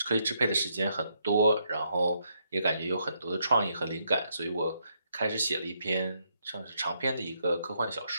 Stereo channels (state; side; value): inverted; both; correlation -0.76